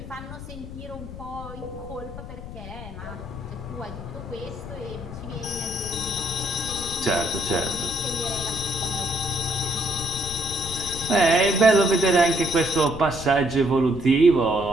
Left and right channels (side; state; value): left; noise; rumble, 11 dB below the sound